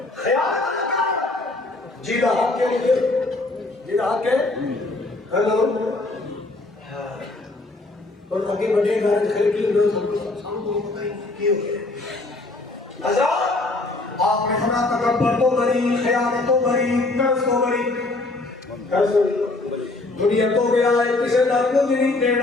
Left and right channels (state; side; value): quieter; right; 3.1 dB